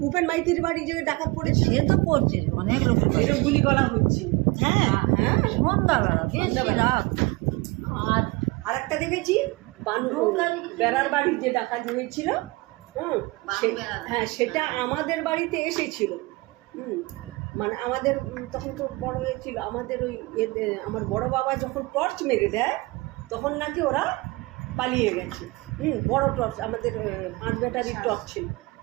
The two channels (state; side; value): quieter; left; 23.5 dB